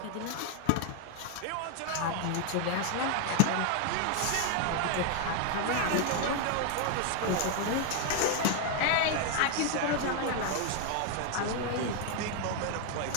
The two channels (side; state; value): both; different; correlation 0.00